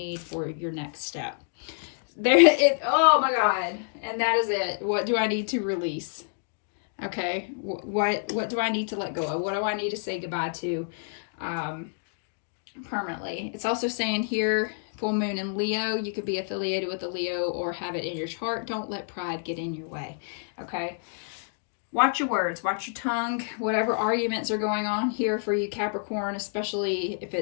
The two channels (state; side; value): silent; right; digital silence